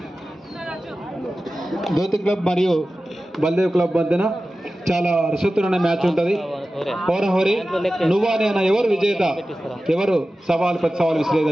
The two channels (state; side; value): normal; both; correlation 0.95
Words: జ్యోతి క్లబ్ మరియు బల్దేవ్ క్లబ్ మధ్యన చాలా రసవత్తరమైన మ్యాచ్ ఉంటుంది. హోరహోరి నువ్వా నేనా, ఎవరు విజేత, ఎవరు సవాల్ ప్రతి సవాల్